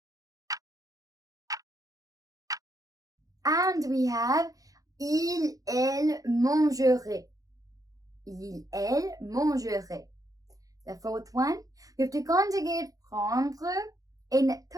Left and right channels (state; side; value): late; left; 0.17 ms